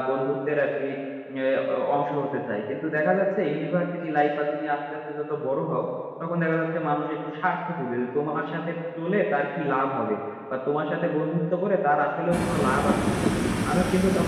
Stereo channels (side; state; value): both; identical; correlation 1.00